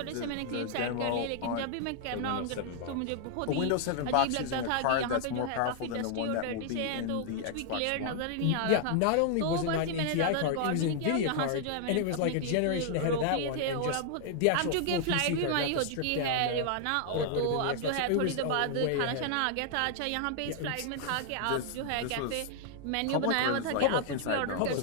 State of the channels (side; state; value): both; different; correlation 0.00